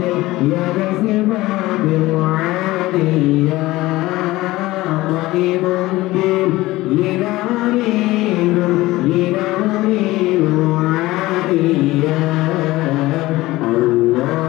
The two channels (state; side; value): quieter; right; 18.4 dB